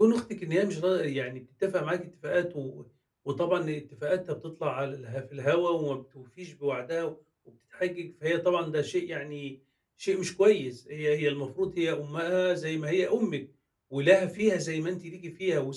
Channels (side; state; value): both; identical; correlation 1.00